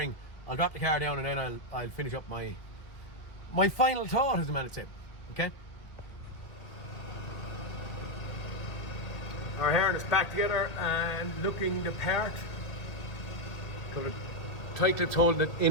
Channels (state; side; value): late; right; 2.0 ms